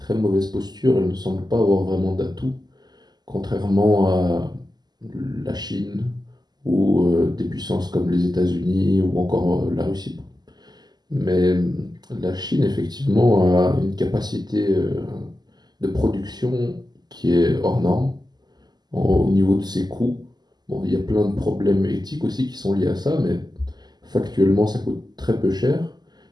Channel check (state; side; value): late; left; 0.20 ms